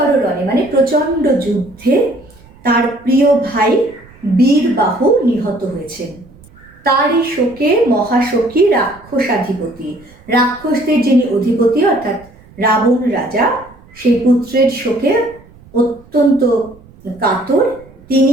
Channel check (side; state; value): right; noise; rumble, 25 dB below the sound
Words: রণে মানে প্রচণ্ড যুদ্ধে তার প্রিয় ভাই বীরবাহু নিহত হয়েছেন। তারই শোকে মহাশোকী রাক্ষসাধিপতি, রাক্ষসদের যিনি অধিপতি অর্থাৎ রাবণ রাজা, সেই পুত্রের শোকে অত্যন্ত কাতর।